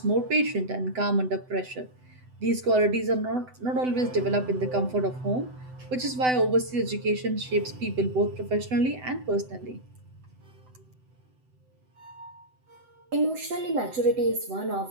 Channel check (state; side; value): late; left; 7.9 ms